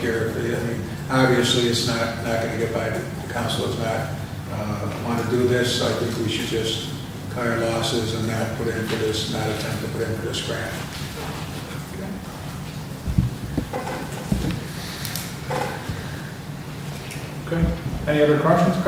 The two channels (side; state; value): both; identical; correlation 1.00